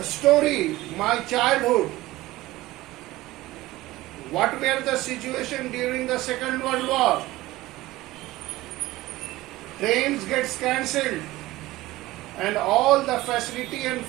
story, My Childhood, what were the situation during the Second World War? Trains gets cancelled and all the facility and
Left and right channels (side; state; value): left; quieter; 17.9 dB